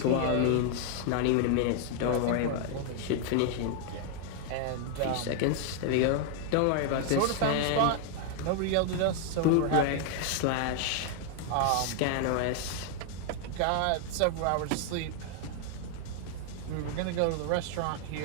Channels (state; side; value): different; both; correlation 0.00